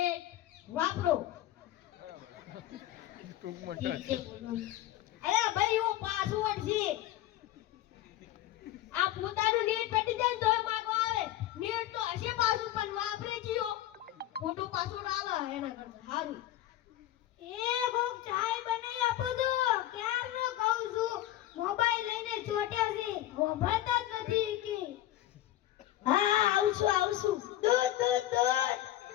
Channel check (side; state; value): right; quieter; 14.0 dB